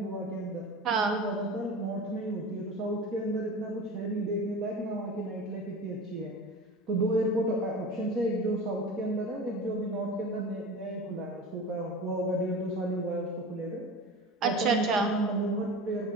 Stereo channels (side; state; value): both; normal; correlation 0.33